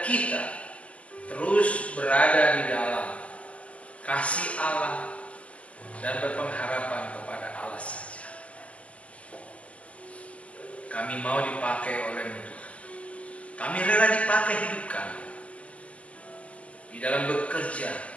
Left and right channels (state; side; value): late; right; 0.064 ms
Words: kita terus berada di dalam kasih Allah dan berpengharapan kepada Allah saja. Kami mau dipakai oleh Tuhan. Kami rela dipakai hidup kami di dalam bekerja,